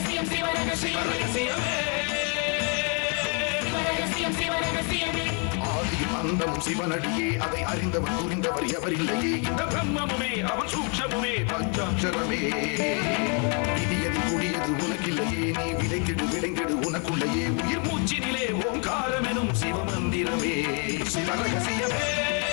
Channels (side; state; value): right; quieter; 37.7 dB